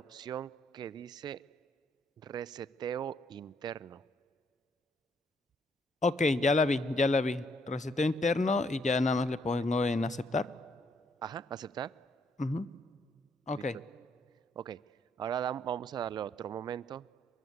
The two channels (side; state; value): both; normal; correlation 0.70